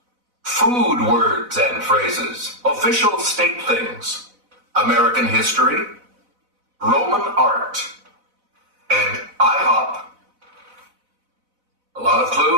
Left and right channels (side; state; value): left; late; 4.0 ms